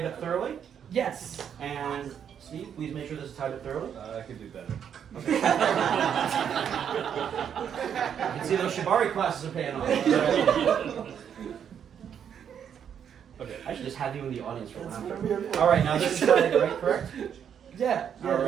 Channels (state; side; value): quieter; left; 8.4 dB